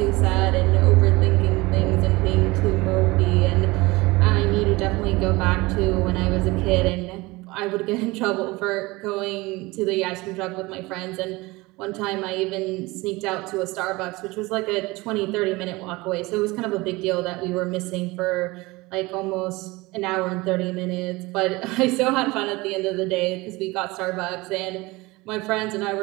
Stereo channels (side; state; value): left; quieter; 22.2 dB